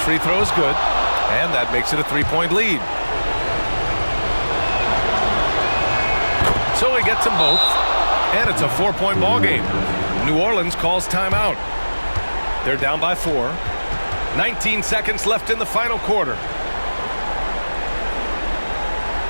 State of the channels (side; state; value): both; inverted; correlation -1.00